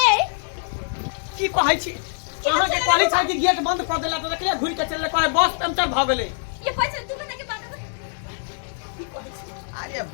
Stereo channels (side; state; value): right; silent; digital silence